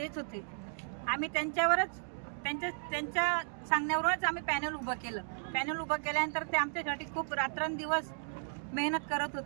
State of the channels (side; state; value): left; silent; digital silence